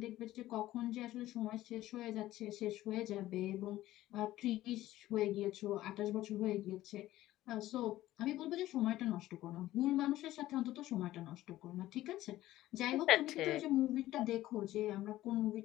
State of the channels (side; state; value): right; quieter; 15.2 dB